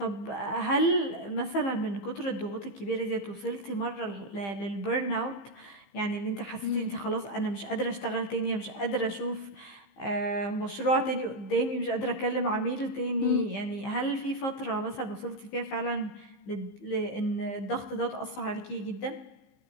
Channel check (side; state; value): right; late; 15 ms